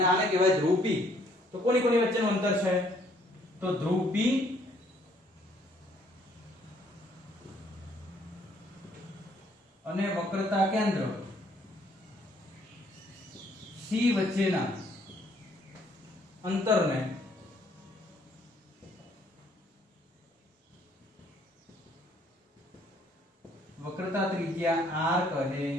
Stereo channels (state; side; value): normal; both; correlation 0.64